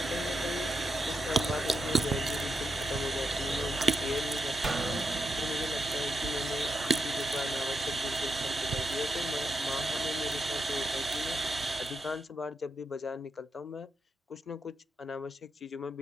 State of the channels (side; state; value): both; normal; correlation 0.84